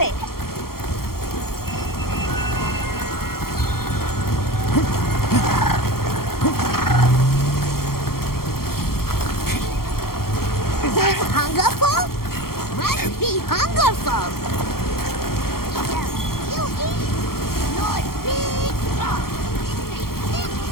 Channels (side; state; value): right; late; 0.93 ms